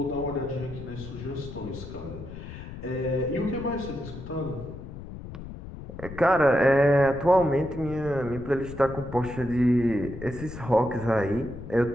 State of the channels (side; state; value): left; noise; rumble, 12 dB below the sound